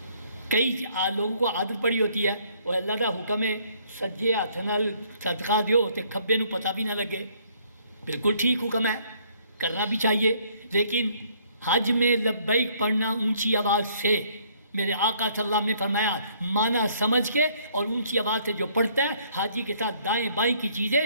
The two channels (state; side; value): inverted; both; correlation -0.64